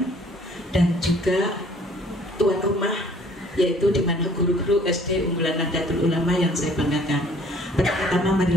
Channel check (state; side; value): normal; both; correlation 0.56